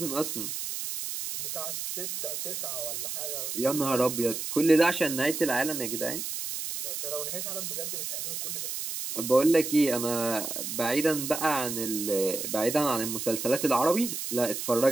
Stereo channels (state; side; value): noise; right; hiss, 5 dB below the sound